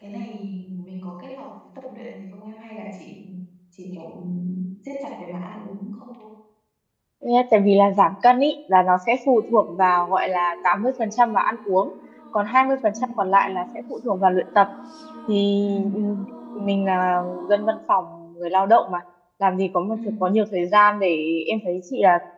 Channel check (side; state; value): both; identical; correlation 1.00